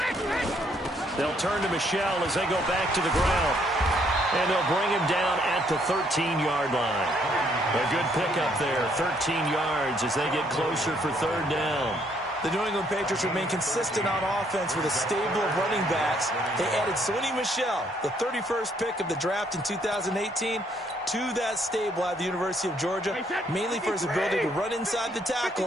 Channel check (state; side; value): normal; both; correlation 0.69